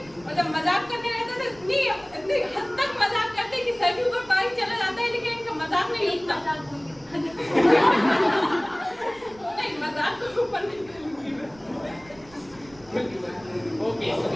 और जब मजाक करने रहते तो इतनी हद तक मजाक करते कि सर के ऊपर पानी चला जाता है, लेकिन इनका मजाक नहीं लगता। नहीं, मजाक को ऊपर नहीं करूंगी मैं। ओके, तो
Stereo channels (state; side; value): noise; right; rumble, 26 dB below the sound